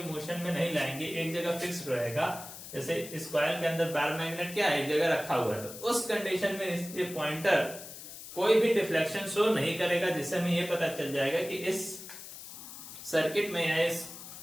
मोशन में नहीं लाएंगे, एक जगह फिक्स रहेगा। जैसे इस कॉइल के अंदर बार मैग्नेट क्या है, एक जगह रखा हुआ है, तो उस कंडीशन में इसके पॉइंटर कोई भी डिफ्लेक्शन शो नहीं करेगा, जिससे हमें ये पता चल जाएगा कि इस सर्किट में या इस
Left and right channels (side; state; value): left; noise; hiss, 13 dB below the sound